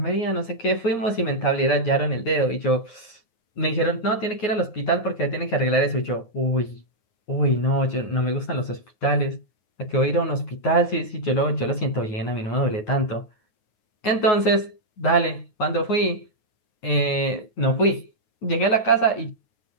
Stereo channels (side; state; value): right; late; 9.4 ms